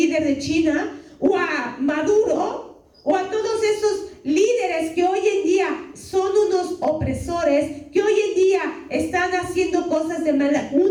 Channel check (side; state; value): both; identical; correlation 1.00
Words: de China, o a Maduro, o a todos esos líderes que hoy en día son unos opresores, que hoy en día están haciendo cosas de maldad?